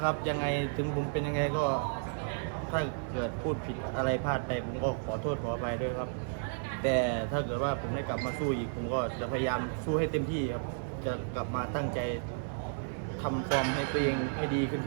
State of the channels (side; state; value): left; silent; 56 dB below the other